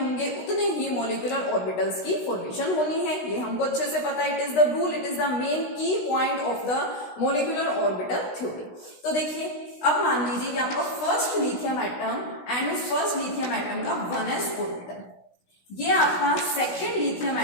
उतने ही मोलिकुलर ऑर्बिटल्स की फॉर्मेशन होनी है, ये हमको अच्छे से पता है। It is the rule, it is the main key point of the molecular orbital theory. तो देखिए, अब मान लीजिए कि आपका फर्स्ट लिथियम एटम एंड उस फर्स्ट लिथियम एटम का 1s ऑर्बिटल, ये आपका सेकेंड लिथियम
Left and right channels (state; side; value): late; right; 16 ms